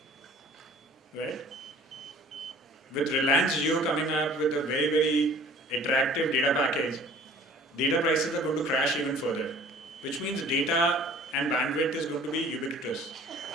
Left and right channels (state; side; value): normal; both; correlation 0.50